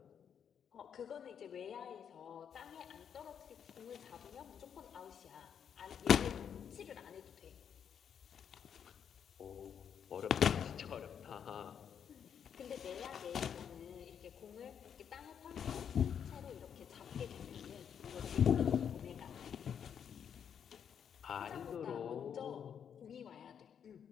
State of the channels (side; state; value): right; quieter; 8.0 dB